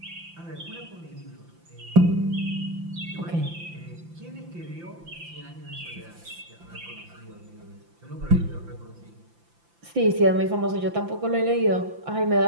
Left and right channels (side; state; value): left; late; 5.9 ms